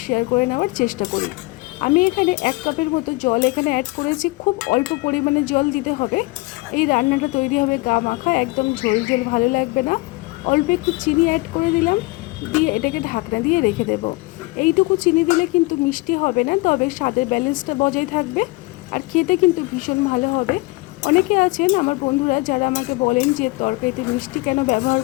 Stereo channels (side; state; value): right; quieter; 23.6 dB